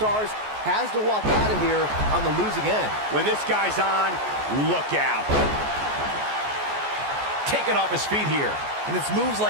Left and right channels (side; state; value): left; late; 14 ms